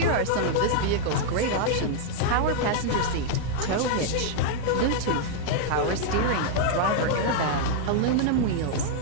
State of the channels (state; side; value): different; both; correlation -0.01